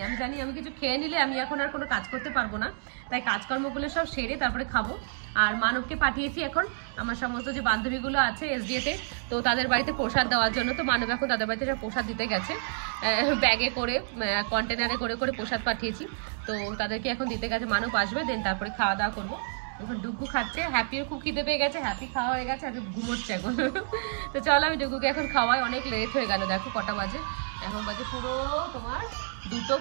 আমি জানি আমি কিছু খেয়ে নিলে আমি এখন আর কোনো কাজ করতে পারবো না, তাই কাজকর্মগুলো সব সেরে তারপরে খাবো। আর মানবকে পাঠিয়েছি এখন আমার সমস্ত যে বান্ধবীগুলো আছে এসডিএতে, তো তাদের বাড়িতে প্রসাদ দেওয়ার জন্য। তো মানব এখন তাদের বাড়িতে প্রসাদ দিতে গেছে, ব্যাগে করে কন্টেনারে করে করে প্রসাদ পাঠিয়েছি, তো তাদেরকে এখন দিতে গেছে। মানব আসবে, দেন তারপরে খাওয়া দাওয়া করবো। এখন ডুগু খাচ্ছে, হ্যাপিও খুব খিদে পেয়ে গেছে, হ্যাপি খাওয়া হয়ে গেছে, হ্যাপি ঘুমোচ্ছে এখন। তো চলো আমি ডুগুকে এখন খাওয়াই, অনেক লেট হয়ে গেল, দেখো কটা বাজে, এখন বাজে পুরো তোমার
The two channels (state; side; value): silent; left; digital silence